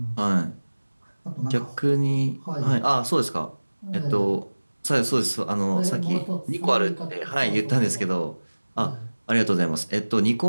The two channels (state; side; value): inverted; both; correlation -1.00